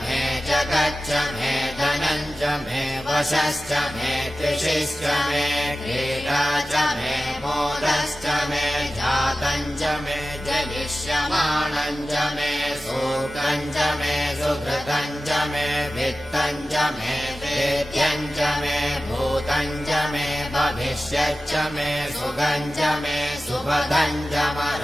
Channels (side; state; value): both; normal; correlation 0.95